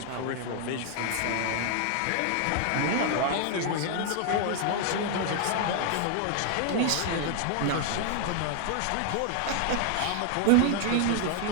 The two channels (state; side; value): different; both; correlation 0.00